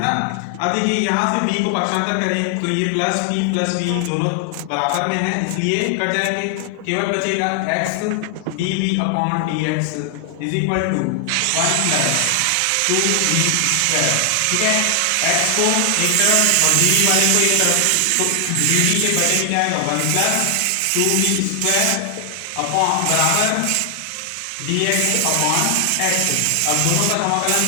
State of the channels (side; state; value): both; different; correlation 0.00